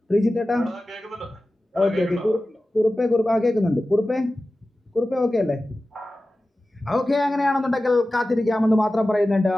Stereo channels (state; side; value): normal; both; correlation 0.95